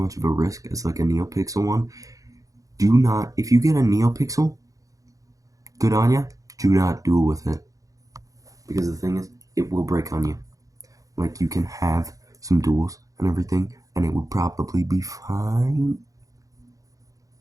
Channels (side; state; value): left; late; 0.17 ms